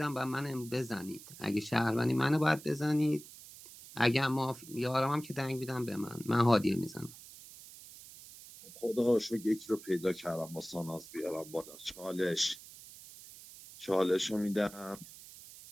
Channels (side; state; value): right; noise; hiss, 17 dB below the sound